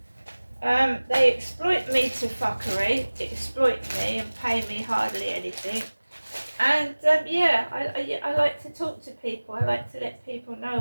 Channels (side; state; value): both; inverted; correlation -1.00